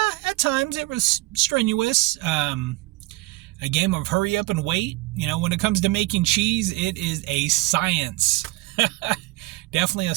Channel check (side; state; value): left; quieter; 19.9 dB